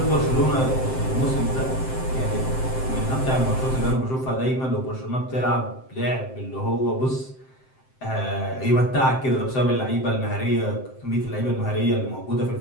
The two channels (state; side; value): late; right; 7.7 ms